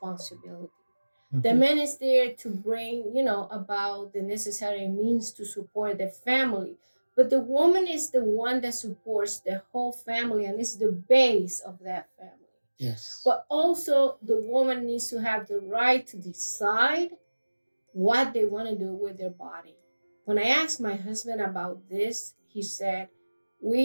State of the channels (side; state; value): both; inverted; correlation -1.00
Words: Mm-hmm. The man is there to bring, about the necessary means to support the family. But the woman is the one that supports the whole family and is the base of that family. Yes. But also the woman needs to have the right to decide what they want to do with their body. When I asked my husband about this, he said,